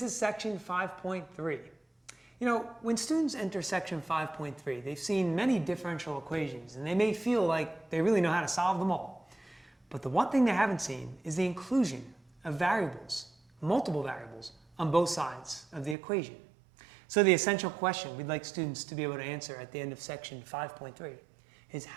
section 5.3. You know, when students enter section 5.3, they've seen many differential equations, and they may feel like they really know how to solve them all. But the one thing they haven't seen is the inclusion of variables, multiple variables, on both sides of the equation. So the essential question we'd like students to be able to answer at the end of section 5.3 is,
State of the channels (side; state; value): left; drops out; at 16.0 s